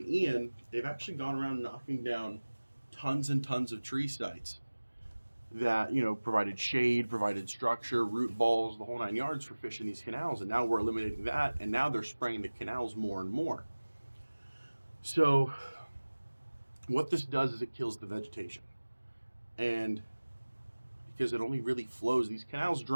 Ian, they've actually gone around knocking down tons and tons of tree sites that, provided shade, provided structure, root balls, the whole 9 yards for fish in these canals. And now we're eliminating that, and now they're spraying the canals more and more. So what this does is it kills the vegetation. And because it only really flows, these canals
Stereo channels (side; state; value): both; inverted; correlation -1.00